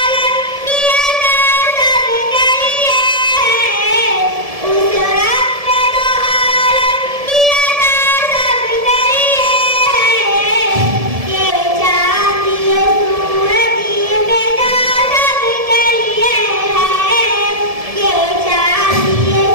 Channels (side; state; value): left; late; 1.7 ms